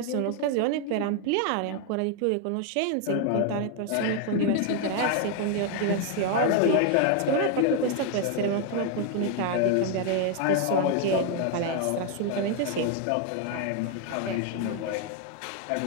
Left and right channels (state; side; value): different; both; correlation 0.00